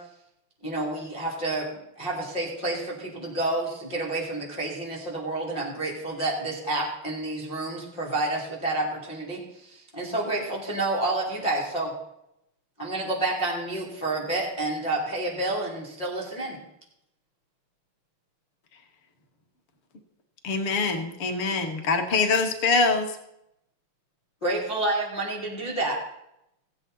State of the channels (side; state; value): right; late; 6.8 ms